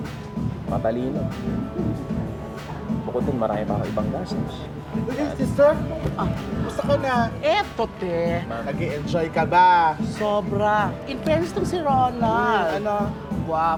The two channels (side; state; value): both; identical; correlation 1.00